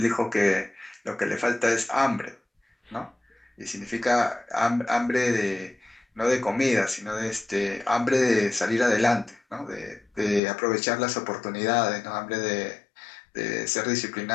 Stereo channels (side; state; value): right; drops out; at 10.4 s